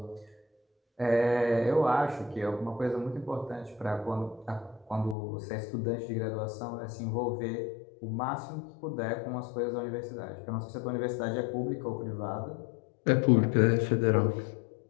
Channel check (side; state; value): right; drops out; at 5.2 s